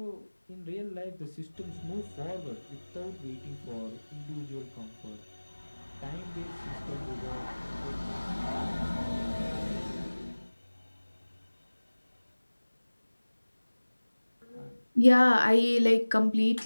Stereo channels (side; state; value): both; inverted; correlation -1.00